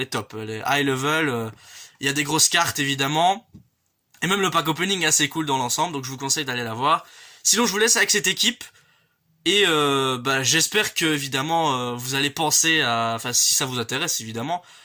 top, elle est high level, il y a des grosses cartes évidemment, et même le pack opening est assez cool dans l'ensemble, donc je vous conseille d'aller la voir. Sinon je vous laisse avec cette équipe, et j'espère que évidemment vous allez penser à, enfin si ça vous intéresse évidemment,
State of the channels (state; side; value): identical; both; correlation 1.00